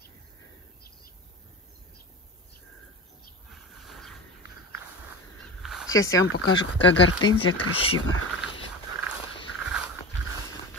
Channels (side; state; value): both; normal; correlation 0.28